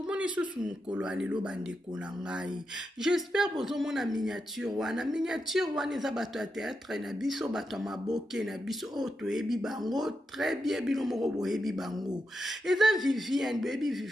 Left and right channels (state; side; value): normal; both; correlation 0.86